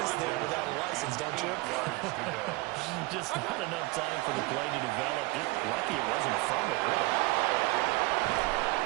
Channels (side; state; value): left; quieter; 22.7 dB